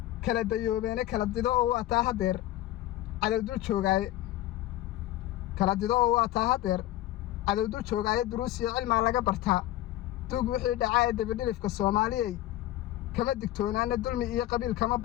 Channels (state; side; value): quieter; right; 14.7 dB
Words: kala dayoobeene kala dido oo waataa haddeer cadowdul joogaaye cadowdul joogaaye duruus iyo cilmaa laga bartaa duug wixii dhacaa ee dabadhilifka soomaaliyey kama digtoonaane dulmi iyo qabiil kama